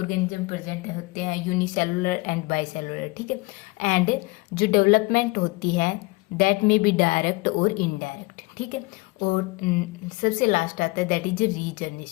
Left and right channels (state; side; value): quieter; right; 24.3 dB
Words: प्रेजेंट होते हैं, यूनिसेलुलर एंड बाइसेलुलर, ठीक है। एंड जो डेवलपमेंट होती है दैट में बी डायरेक्ट और इनडायरेक्ट, ठीक है। और सबसे लास्ट आता है दैट इज